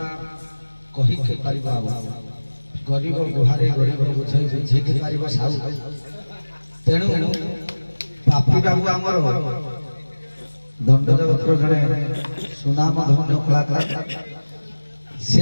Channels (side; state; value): both; inverted; correlation -1.00